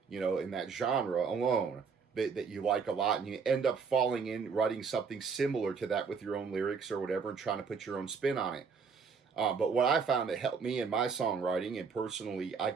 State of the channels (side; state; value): left; quieter; 5.6 dB